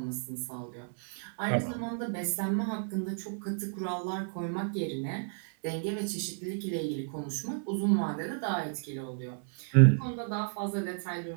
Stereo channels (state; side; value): silent; left; 56 dB below the other